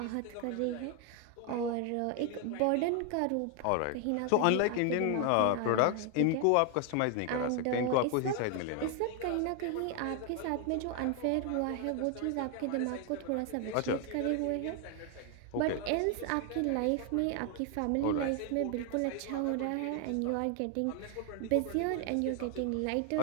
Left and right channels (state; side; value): different; both; correlation 0.00